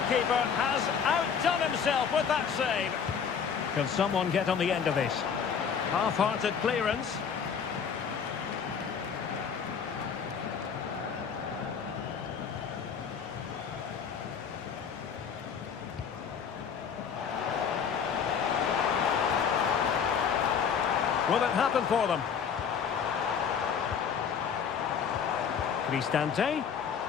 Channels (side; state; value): right; quieter; 7.0 dB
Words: has outdone himself with that save. Can someone get on the end of this? Half-hearted clearance. Will it happen for them? Cristante.